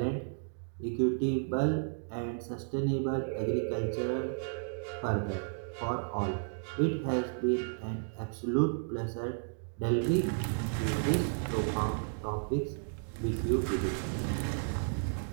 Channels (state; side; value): silent; left; digital silence